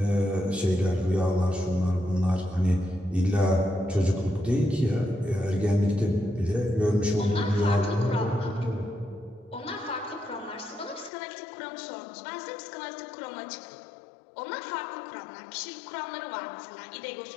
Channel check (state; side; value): drops out; right; at 11.1 s